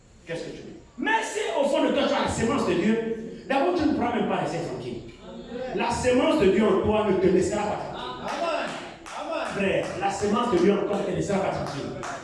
Qu'est-ce que tu veux? Mais si au fond de toi tu as la sémence de Dieu, même pas rester tranquille. La semence de Dieu en toi ne te laissera pas tranquille. Amen. Frère, la semence de Dieu en toi ne te laissera pas tranquille.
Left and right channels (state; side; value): identical; both; correlation 1.00